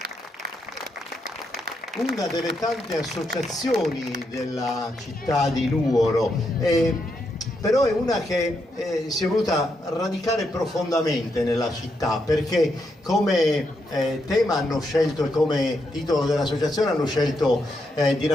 una delle tante associazioni della città di Nuoro, però è una che si è voluta radicare profondamente nella città, perché come tema hanno scelto e come titolo dell'associazione hanno scelto di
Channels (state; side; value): normal; both; correlation 0.80